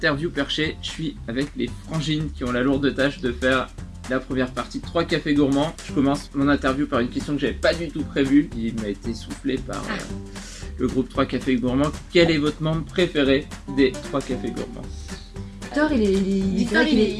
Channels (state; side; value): identical; both; correlation 1.00